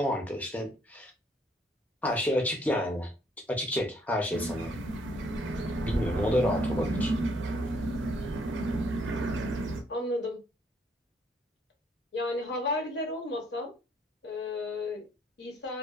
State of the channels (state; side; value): normal; both; correlation 0.67